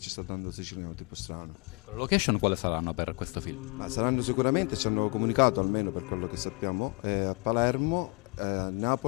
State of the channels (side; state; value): right; quieter; 28.4 dB